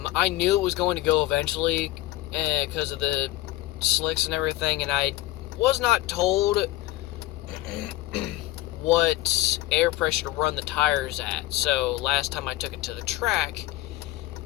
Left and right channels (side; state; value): right; quieter; 16.9 dB